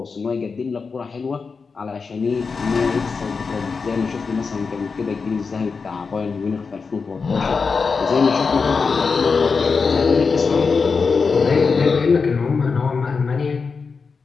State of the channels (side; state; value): right; quieter; 5.0 dB